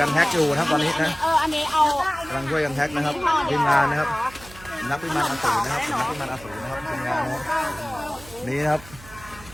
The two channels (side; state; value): right; noise; hum, 19 dB below the sound